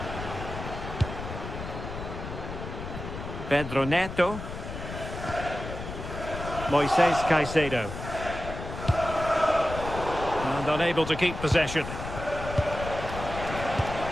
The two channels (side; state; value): left; noise; rumble, 8 dB below the sound